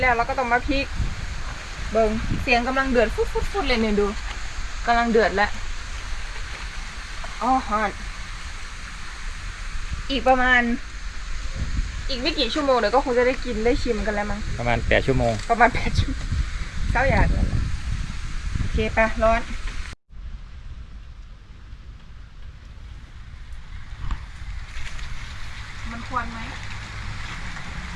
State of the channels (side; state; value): both; identical; correlation 1.00